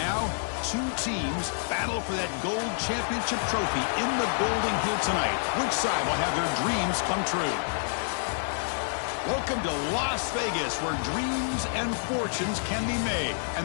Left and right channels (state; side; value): silent; right; digital silence